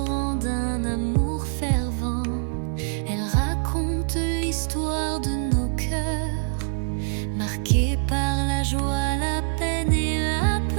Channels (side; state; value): left; silent; 57 dB below the other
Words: d'un amour fervent. Elles racontent l'histoire de nos cœurs, marqué par la joie, la peine et la